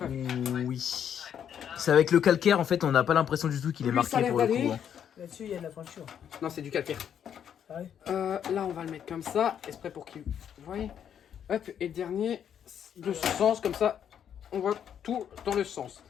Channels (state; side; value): quieter; right; 8.8 dB